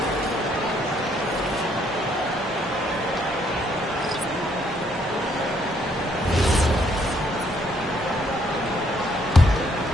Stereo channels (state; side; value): normal; both; correlation 0.68